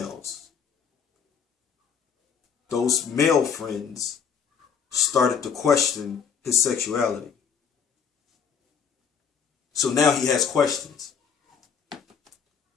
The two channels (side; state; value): right; quieter; 6.9 dB